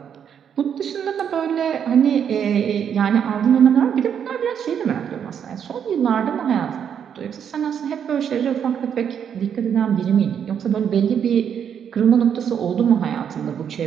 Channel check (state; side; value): quieter; left; 8.2 dB